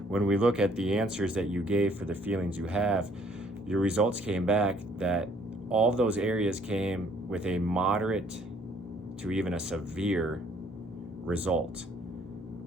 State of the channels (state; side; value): normal; both; correlation 0.62